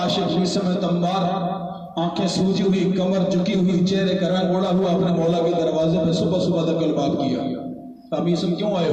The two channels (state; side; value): identical; both; correlation 1.00